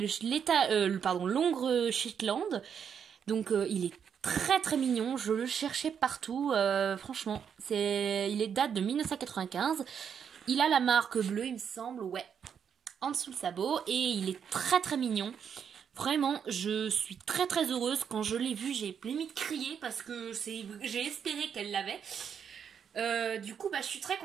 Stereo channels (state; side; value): quieter; left; 7.6 dB